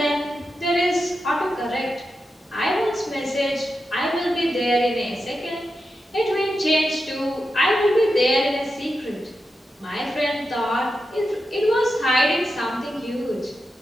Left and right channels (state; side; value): normal; both; correlation 0.89